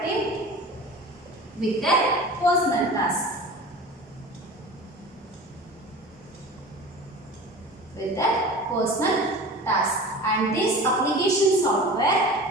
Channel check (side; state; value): both; normal; correlation 0.36